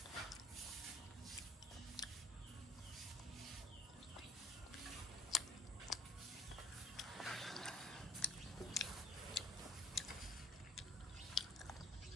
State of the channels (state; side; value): normal; both; correlation 0.55